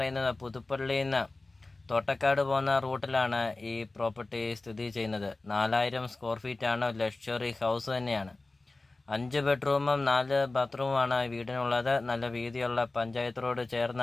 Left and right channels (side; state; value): right; quieter; 3.2 dB